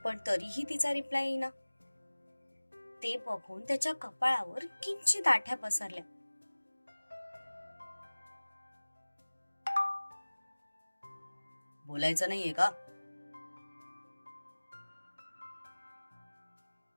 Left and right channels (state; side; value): inverted; both; correlation -1.00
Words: पण तरीही तिचा रिप्लाय येईना. ते बघून त्याच्या कपाळावर किंचित आठ्या पसरल्या. बोलायचं नाहीये का?